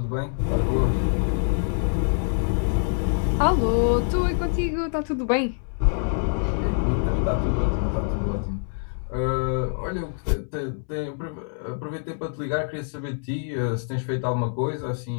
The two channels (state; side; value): silent; right; 62 dB below the other